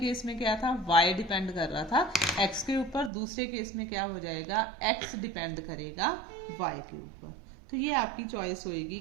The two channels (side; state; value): left; drops out; at 3.1 s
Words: में क्या था, y डिपेंड कर रहा था x के ऊपर, दूसरे केस में क्या हो जाएगा, x डिपेंड करेगा y के ऊपर। तो ये आपकी चॉइस होएगी